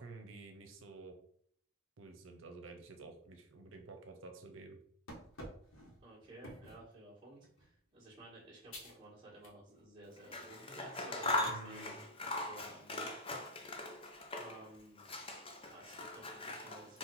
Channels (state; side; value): normal; both; correlation -0.14